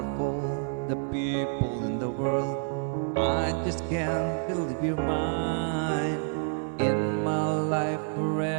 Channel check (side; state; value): left; silent; 59 dB below the other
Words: all the people in the world, I just can't believe you're mine. In my life